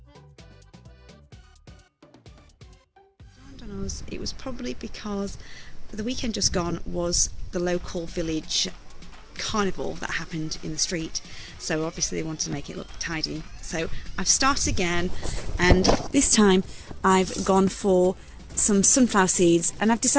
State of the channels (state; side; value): identical; both; correlation 1.00